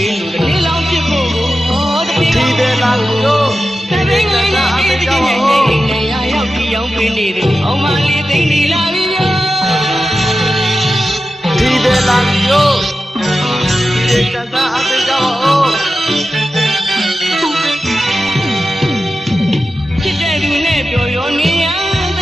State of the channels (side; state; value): both; normal; correlation 0.92